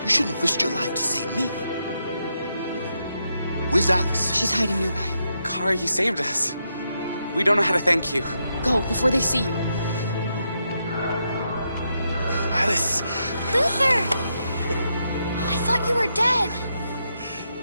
You shouldn't have risked your life to save me. Where's Alice? She's hiding nearby. Kara, you saved us. We don't know how to thank you. Go, before they see you. Alice! Luther! I thought you were dead.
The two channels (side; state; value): both; inverted; correlation -0.82